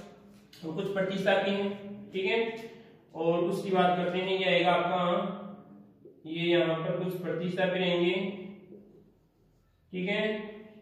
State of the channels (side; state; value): both; identical; correlation 1.00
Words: तो कुछ प्रतिस्थापी हैं। ठीक है, और उसकी बात करते हैं, ये आएगा आपका, ये यहाँ पर कुछ प्रतिस्थापी रहेंगे। ठीक है,